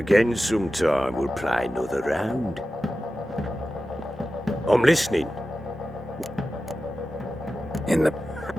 sometime, we'll play another round. I'm listening. In the...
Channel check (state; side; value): normal; both; correlation 0.93